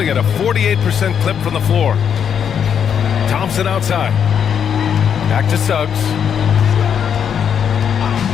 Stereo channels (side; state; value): right; quieter; 8.0 dB